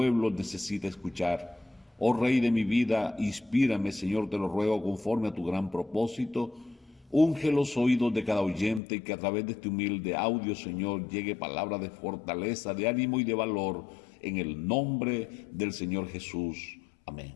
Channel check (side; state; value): right; drops out; at 8.8 s